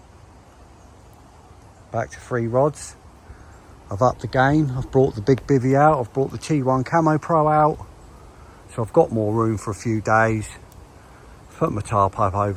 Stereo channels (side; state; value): both; identical; correlation 1.00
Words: Back to 3 rods. I've upped the game. I've brought the big bivvy out. I've brought the T1 Camo Pro out. So I've got more room for a few days. Put my tarp up